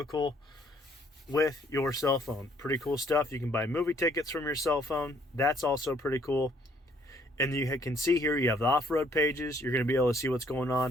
with your cell phone. Pretty cool stuff. You can buy movie tickets from your cell phone. That's also pretty cool. And you can see here you have the off-road pages. You're going to be able to see what's going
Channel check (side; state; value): both; normal; correlation 0.64